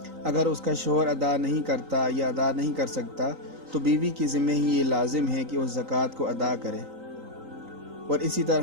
اگر اس کا شوہر ادا نہیں کرتا یا ادا نہیں کر سکتا تو بیوی کی ذمہ ہی یہ لازم ہے کہ اس زکوٰۃ کو ادا کرے۔ اور اسی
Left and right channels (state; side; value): late; left; 3.9 ms